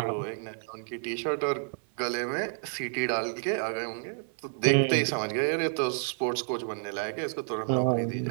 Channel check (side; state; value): left; silent; 58 dB below the other